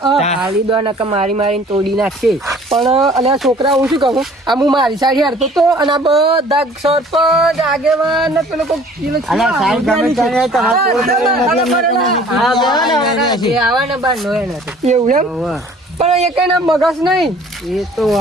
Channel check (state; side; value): normal; both; correlation 0.52